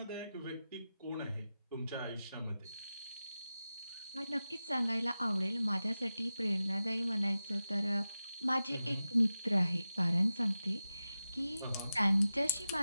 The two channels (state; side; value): inverted; both; correlation -0.93